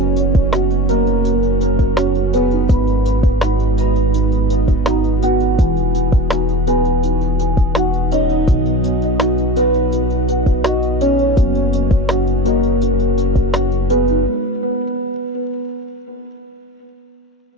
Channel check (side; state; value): both; normal; correlation 0.32